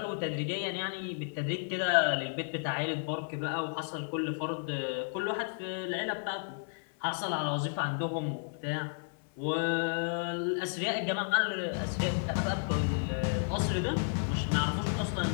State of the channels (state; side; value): silent; right; 56 dB below the other